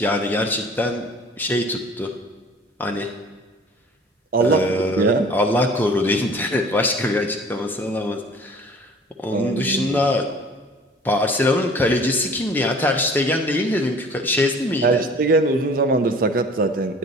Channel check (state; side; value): normal; both; correlation 0.48